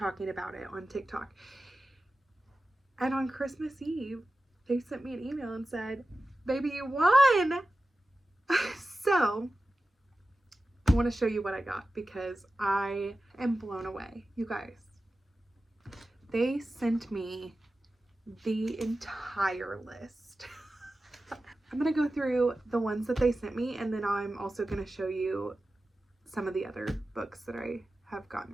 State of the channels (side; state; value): both; normal; correlation 0.94